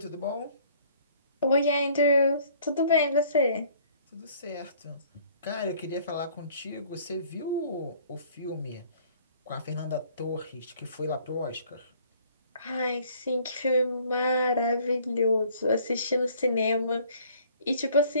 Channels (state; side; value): inverted; both; correlation -0.57